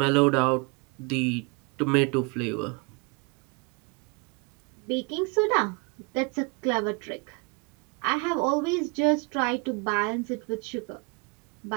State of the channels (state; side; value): quieter; left; 31.4 dB